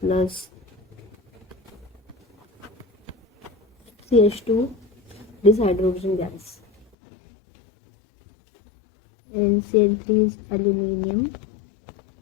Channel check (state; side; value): drops out; right; at 6.9 s